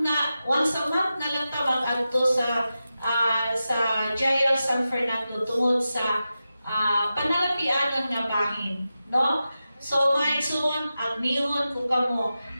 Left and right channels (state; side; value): inverted; both; correlation -0.92